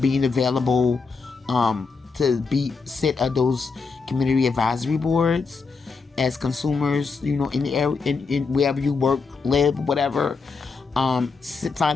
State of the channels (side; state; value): right; quieter; 4.7 dB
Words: available to sit at those community advisory boards as consumers, in the area, in wherever you work, live, whatever.